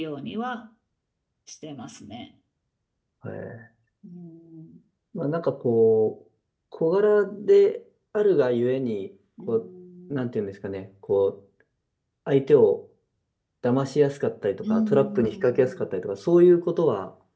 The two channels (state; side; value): identical; both; correlation 1.00